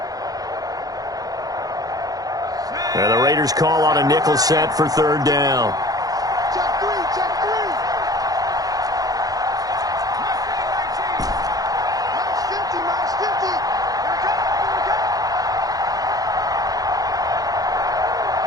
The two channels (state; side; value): late; left; 0.18 ms